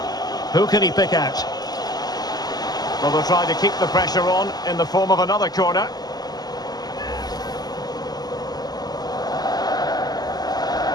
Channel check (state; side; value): late; right; 0.19 ms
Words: Who can he pick out? Well, they'll try to keep the pressure on in the form of another corner.